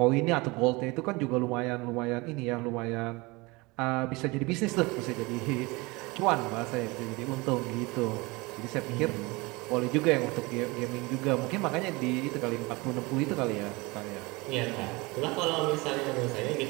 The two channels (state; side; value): quieter; left; 24.5 dB